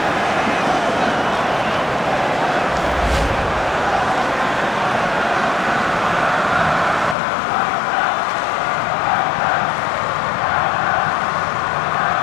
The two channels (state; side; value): drops out; right; at 7.2 s